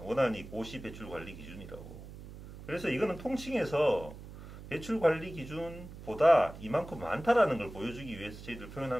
원안이 고시 배출 관리 기준이라고. 그래서 이거는 통칭해서 배출 관리 기준보다 이만큼 많다라는 걸 보여주기 위해서 저희들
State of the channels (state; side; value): noise; right; hum, 14 dB below the sound